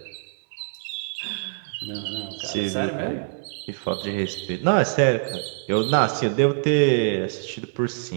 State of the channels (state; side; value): silent; left; digital silence